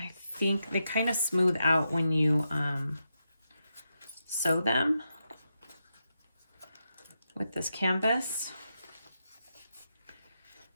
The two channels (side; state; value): both; inverted; correlation -0.86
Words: think they kind of smooth out when you sew them with this canvas.